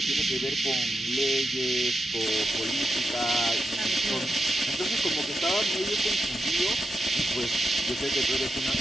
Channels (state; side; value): normal; both; correlation 0.86